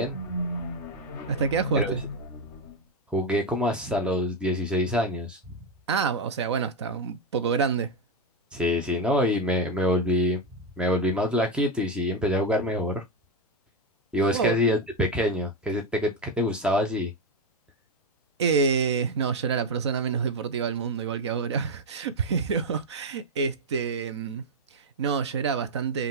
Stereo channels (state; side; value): normal; both; correlation 0.09